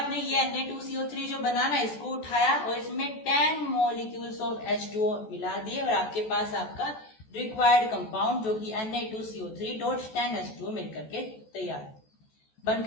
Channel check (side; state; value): right; late; 14 ms